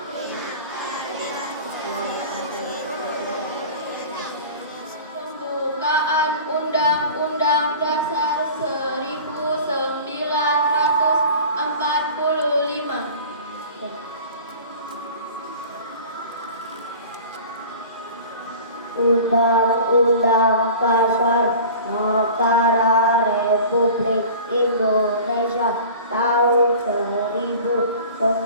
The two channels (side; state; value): both; inverted; correlation -0.40